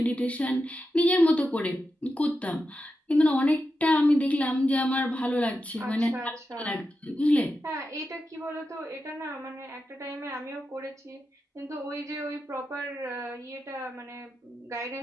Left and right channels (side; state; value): both; normal; correlation 0.89